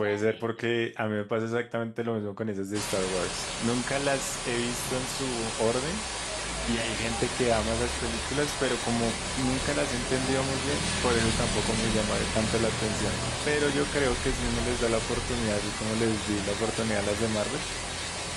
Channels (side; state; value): both; identical; correlation 1.00